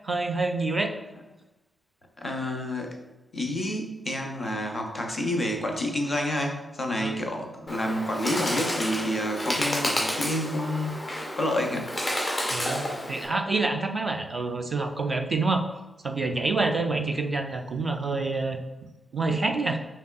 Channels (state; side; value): normal; both; correlation 0.81